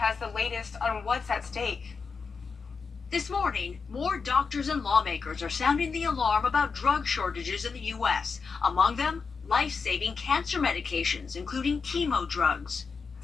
the latest on what's at stake. This morning, more doctors and lawmakers are sounding the alarm about drug shortages in the U.S. Among them, life-saving cancer medications, including chemo drugs.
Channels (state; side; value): quieter; right; 5.1 dB